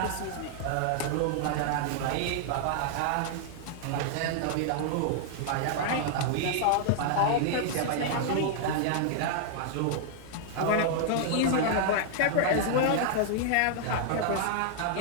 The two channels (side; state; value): both; different; correlation -0.01